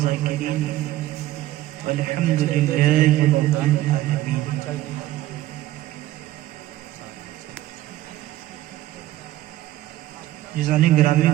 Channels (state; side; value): quieter; left; 15.2 dB